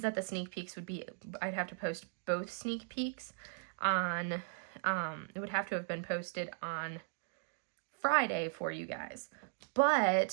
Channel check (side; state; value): left; silent; digital silence